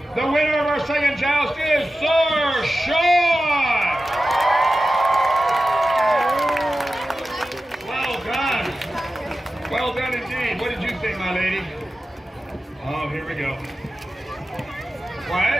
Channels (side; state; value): both; normal; correlation 0.94